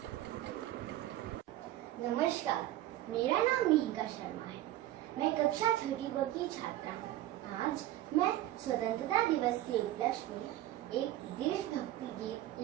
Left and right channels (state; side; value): quieter; left; 14.3 dB